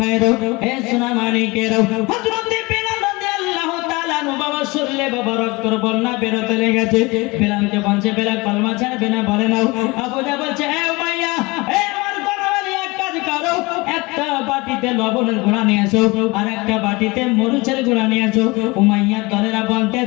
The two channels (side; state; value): right; quieter; 24.2 dB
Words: হে সোনা মানিকেরা, হযরতে বেলাল রাদিয়াল্লাহু তাআলা আনহু বাবা শরীরে বাবা রক্তের বন্যা বেরোতে লেগেছে। বেলালকে বলছে, বেলাল কলমা ছাড়বে না? বলে নাও। আবু জাহল বলছে, এ উমাইয়া, এ আমার গণবালি এক কাজ করো, একটা বাটিতে লবণের গুঁড়া নিয়ে এসো আর একটা বাটিতে মরিচের গুঁড়া নিয়ে এসো। উমাইয়ার দলেরা